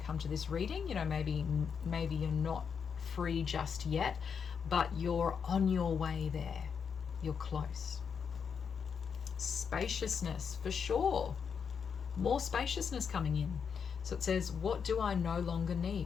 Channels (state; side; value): quieter; right; 6.6 dB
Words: to this reading. You know, maybe you're not free just yet, but you're on your way there. You're close. Spaciousness, for sure. More spaciousness coming in. So it says, what do I no longer